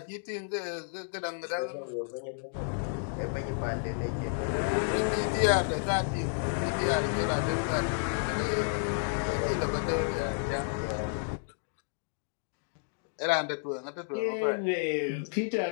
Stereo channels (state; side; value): silent; right; digital silence